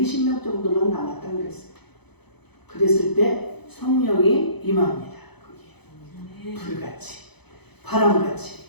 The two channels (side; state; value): right; late; 0.98 ms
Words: 정도만 남았다고 그랬어요. 그랬을 때 성령이 임합니다. 거기에 불같이, 바람같이,